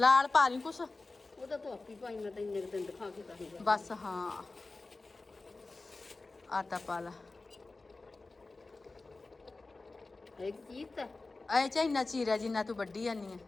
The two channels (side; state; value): right; quieter; 3.5 dB